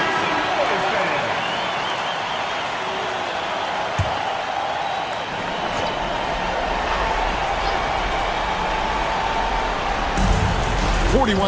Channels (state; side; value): identical; both; correlation 1.00